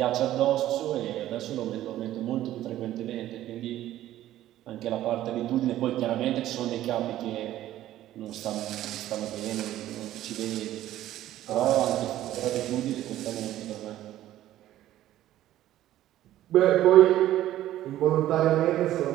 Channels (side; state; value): left; quieter; 13.6 dB